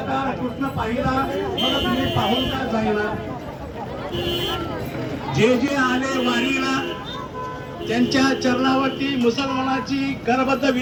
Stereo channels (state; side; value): identical; both; correlation 1.00